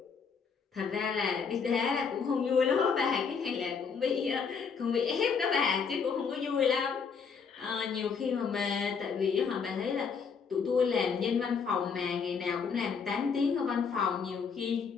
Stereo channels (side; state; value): right; quieter; 5.9 dB